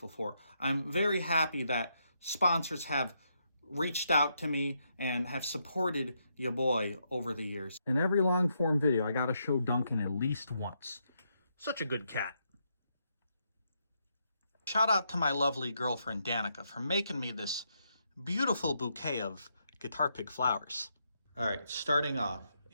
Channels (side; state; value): both; inverted; correlation -0.79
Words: for. I'm very happy that sponsors have reached out to me and have supported your boy over the years. In every long form video, I gotta show Duncan at least once. Such a good cat. Shout out to my lovely girlfriend Danica for making me this beautiful bouquet of guitar pick flowers. All right, starting off,